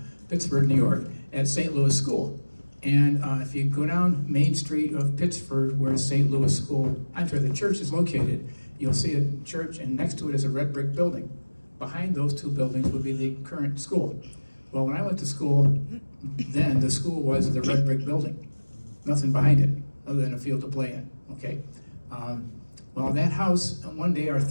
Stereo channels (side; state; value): both; inverted; correlation -1.00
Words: New York, at St. Louis School. And if you go down Main Street of Pittsford, where St. Louis School, the church is located, you'll see a church, and next to it is a red brick building. Behind those 2 buildings would be the current school. Well, when I went to school, then the school was the red brick building. Nothing behind it, other than a field to play in, okay? Well, that house, one day our